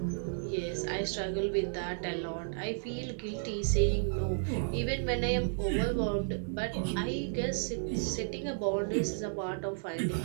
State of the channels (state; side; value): silent; left; digital silence